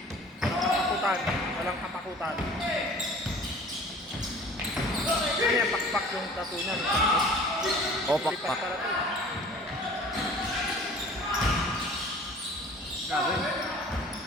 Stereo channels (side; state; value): both; normal; correlation 0.47